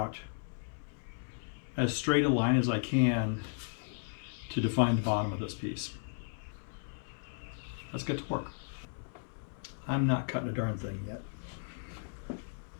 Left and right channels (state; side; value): silent; right; 54 dB below the other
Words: as straight a line as I can to define the bottom of this piece. Let's get to work. I'm not cutting a darn thing yet.